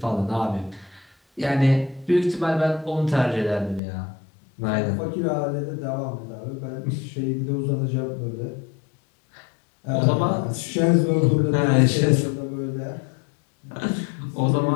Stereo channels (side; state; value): right; drops out; at 3.8 s